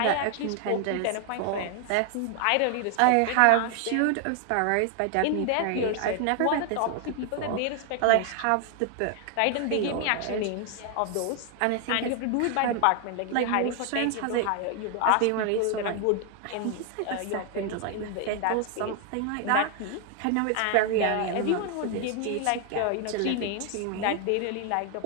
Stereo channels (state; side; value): different; both; correlation 0.00